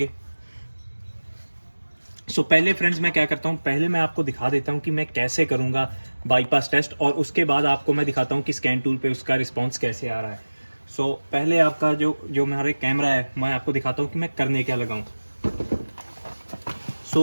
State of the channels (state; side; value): inverted; both; correlation -1.00